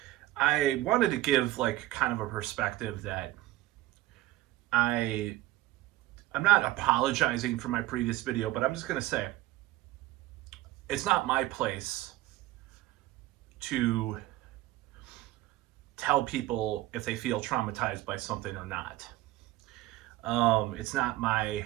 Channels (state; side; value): quieter; left; 16.9 dB